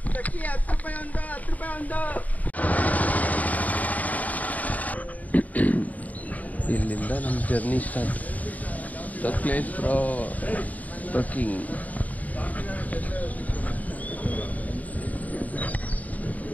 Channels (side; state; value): right; late; 0.074 ms